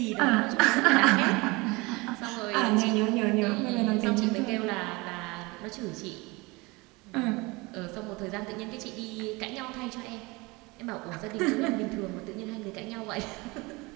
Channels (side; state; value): left; quieter; 24.5 dB